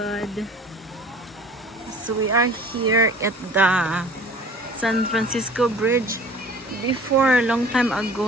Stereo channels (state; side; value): normal; both; correlation 0.46